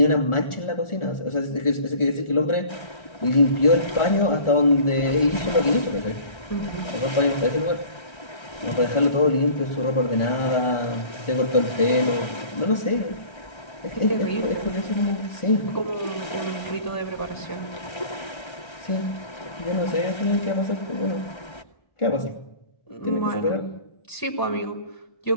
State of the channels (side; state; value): right; late; 1.3 ms